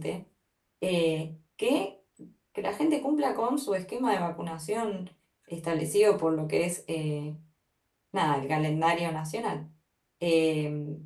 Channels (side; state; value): both; identical; correlation 1.00